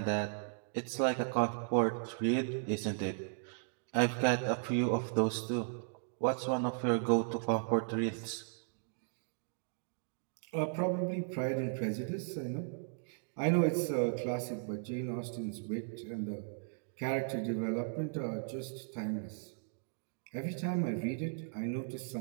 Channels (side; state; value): left; silent; digital silence